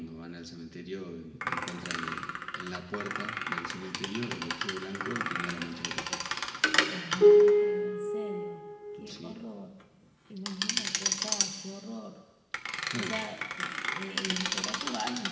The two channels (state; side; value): identical; both; correlation 1.00